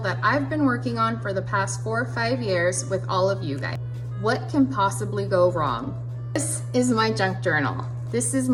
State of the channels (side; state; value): both; identical; correlation 1.00